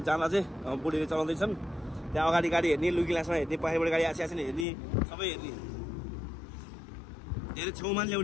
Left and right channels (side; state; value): right; drops out; at 4.7 s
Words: जाँदा चाहिँ बुढीले चलाउँदैछन् त्यहाँ अगाडि गाडी हेर्ने लुकी ग्लासमा हेर्ने पछाडिबाट गाडी आसिआसिने हेर्ने सबै हेर्ने धेरै छेउमा